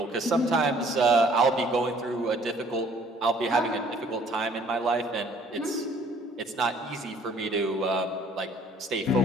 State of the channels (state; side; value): normal; both; correlation 0.58